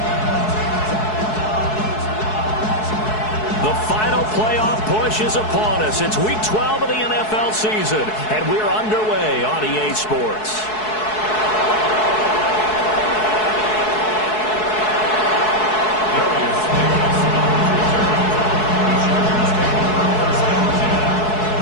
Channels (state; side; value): late; right; 4.7 ms